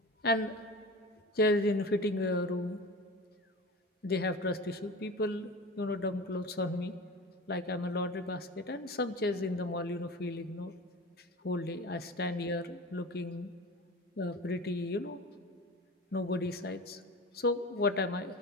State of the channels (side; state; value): both; normal; correlation 0.33